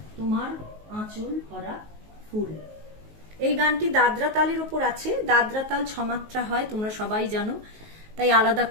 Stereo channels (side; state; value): left; late; 19 ms